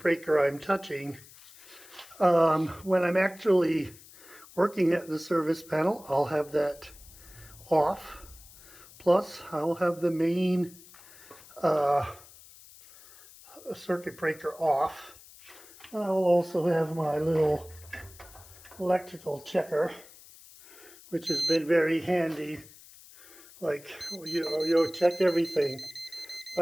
I'm touching. When I'm actually working at the service panel, I'll have that off. Plus, I'll have the main circuit breaker off. And I will also have my little electrical checker, which has been very handy. Like, you check everything.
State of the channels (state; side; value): noise; left; hiss, 21 dB below the sound